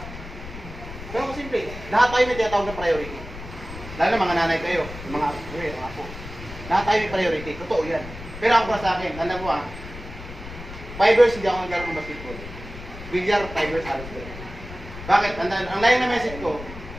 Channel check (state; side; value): noise; left; rumble, 12 dB below the sound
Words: Pero kung simple, lahat tayo may tinatawag na priority. Lalo na mga nanay kayo, yung mga apo. Lahat tayo may priority, totoo yan. Pero ako para sa akin, alam mo 5 years hindi ako naglaro ng basketball. Bilyar, 5 years halos ko. Bakit? Ang line na message ko,